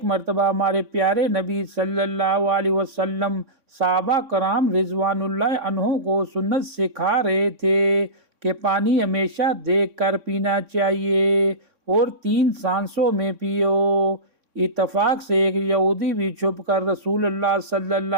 مرتبہ ہمارے پیارے نبی صلی اللہ علیہ وسلم صحابہ کرام رضوان اللہ عنہم کو سنت سکھا رہے تھے کہ پانی ہمیشہ دیکھ کر پینا چاہیے اور 3 سانسوں میں پیو۔ اتفاق سے ایک یہودی بھی چھپ کر رسول اللہ صلی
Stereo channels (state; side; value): late; left; 3.6 ms